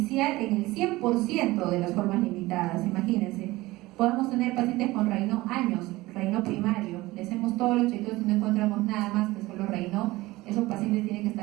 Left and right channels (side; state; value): left; quieter; 19.4 dB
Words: en el 100% de las formas limitadas. Imagínense, podemos tener pacientes con Raynaud años, Raynaud primario, le hacemos todos los chequeos y no encontramos nada más que solo Raynaud. Esos pacientes tienen que